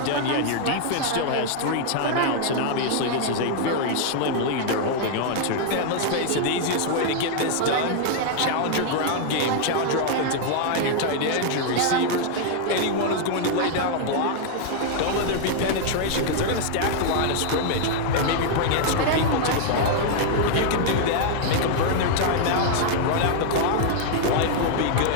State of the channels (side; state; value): both; different; correlation -0.01